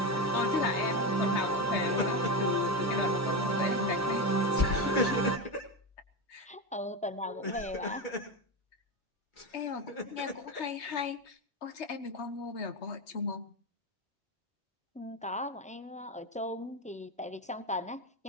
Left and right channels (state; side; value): normal; both; correlation 0.16